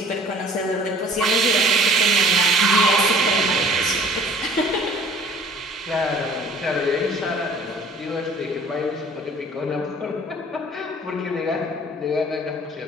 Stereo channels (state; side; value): normal; both; correlation 0.50